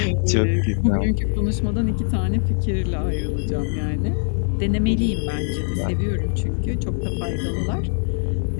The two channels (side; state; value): right; silent; digital silence